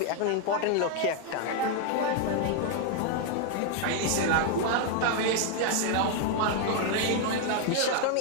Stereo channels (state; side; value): different; both; correlation 0.00